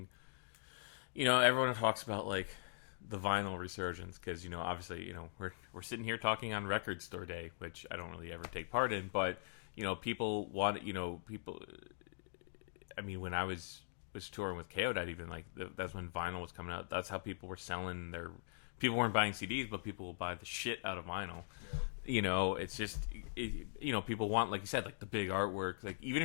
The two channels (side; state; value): right; silent; digital silence